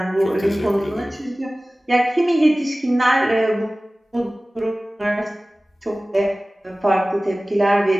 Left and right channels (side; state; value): both; normal; correlation 0.98